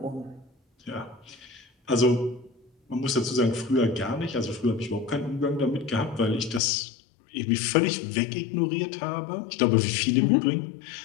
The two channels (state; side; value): drops out; right; at 6.6 s